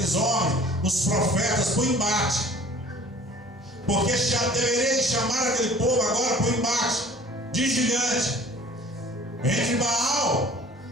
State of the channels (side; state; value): both; normal; correlation 0.49